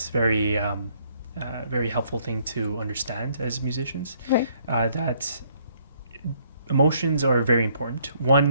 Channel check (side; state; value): both; inverted; correlation -0.66